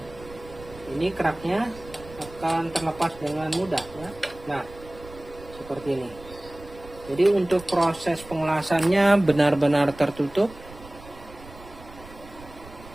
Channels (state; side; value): noise; right; rumble, 18 dB below the sound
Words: ini keraknya akan terlepas dengan mudah ya. Nah, seperti ini. Jadi untuk proses pengelasannya benar-benar tertutup.